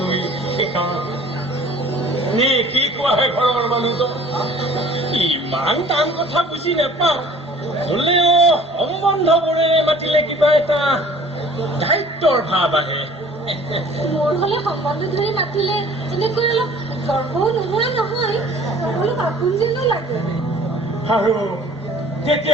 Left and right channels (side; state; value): both; normal; correlation 0.50